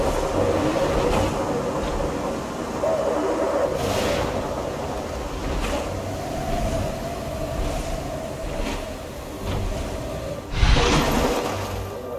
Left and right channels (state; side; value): identical; both; correlation 1.00